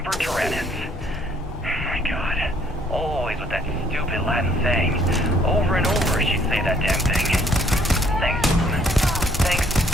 tyrannis. My God. Always with that stupid Latin saying. Over and over she'd say that damn thing. Thanks, Mom. Thanks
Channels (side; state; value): both; normal; correlation 0.64